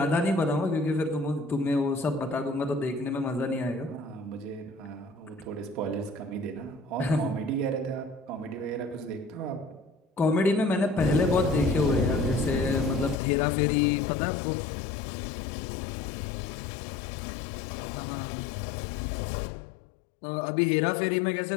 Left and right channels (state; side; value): drops out; right; at 13.2 s